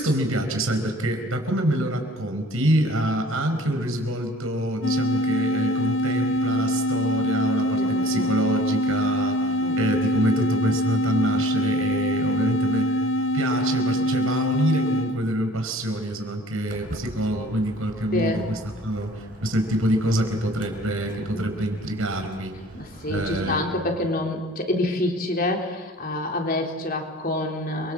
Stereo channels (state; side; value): normal; both; correlation 0.49